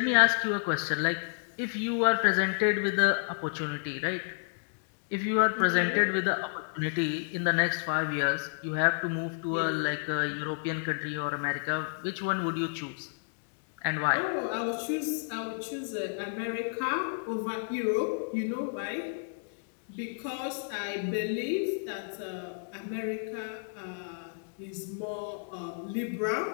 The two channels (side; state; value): right; silent; digital silence